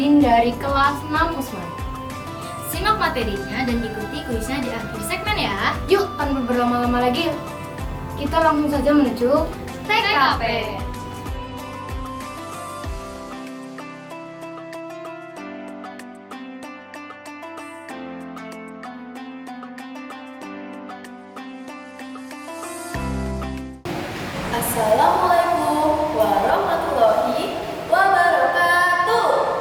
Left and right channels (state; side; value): identical; both; correlation 1.00